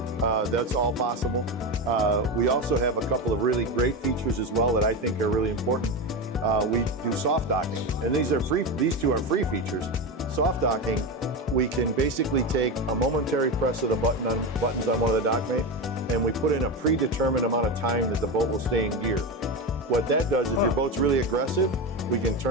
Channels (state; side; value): normal; both; correlation 0.17